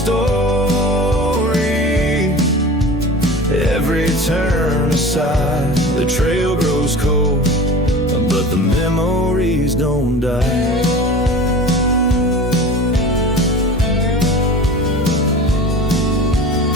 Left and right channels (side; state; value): both; normal; correlation 0.37